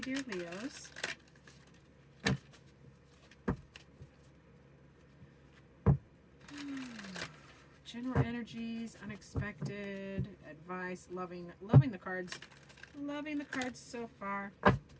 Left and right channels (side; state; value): both; identical; correlation 1.00